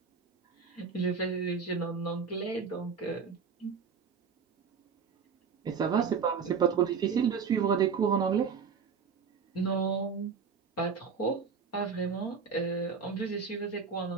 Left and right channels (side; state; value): left; quieter; 6.0 dB